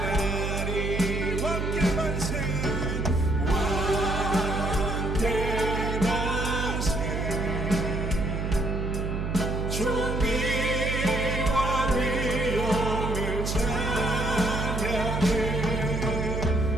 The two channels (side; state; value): right; noise; hum, 2 dB below the sound